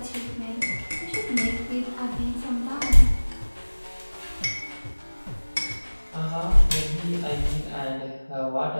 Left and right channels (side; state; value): both; inverted; correlation -1.00